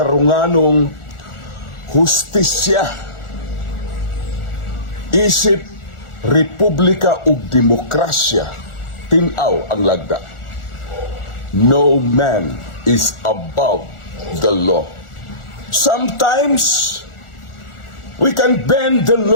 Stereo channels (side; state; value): right; late; 1.4 ms